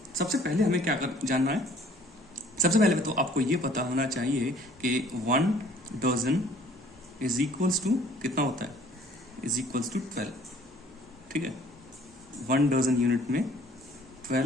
सबसे पहले हमें क्या जानना है, सबसे पहले तो आपको ये पता होना चाहिए कि 1 dozen इज इक्वल्स टू कितना होता है, इज इक्वल्स टू 12। ठीक है, 1 dozen यूनिट में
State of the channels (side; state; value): both; normal; correlation 0.56